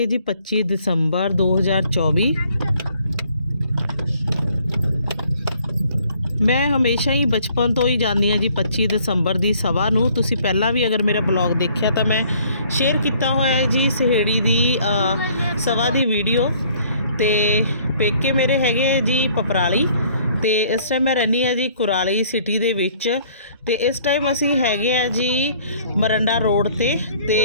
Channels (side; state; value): both; inverted; correlation -0.59